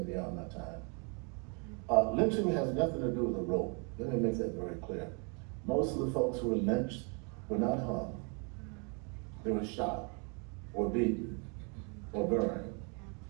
beyond my time. Lynching has nothing to do with the rope. Let me make that very clear. Most of the folks who were lynched were not hung. They were shot or beaten or burned.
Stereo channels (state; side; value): quieter; left; 35.6 dB